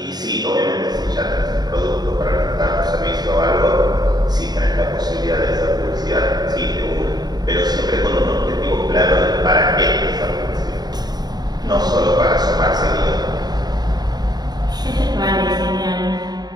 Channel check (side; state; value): left; late; 0.20 ms